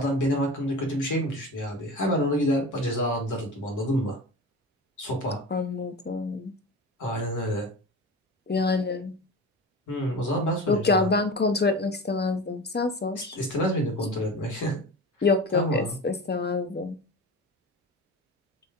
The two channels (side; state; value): both; normal; correlation 0.32